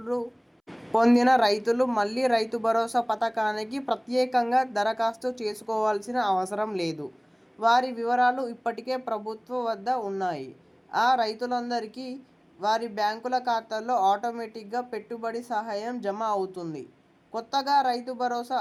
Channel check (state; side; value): identical; both; correlation 1.00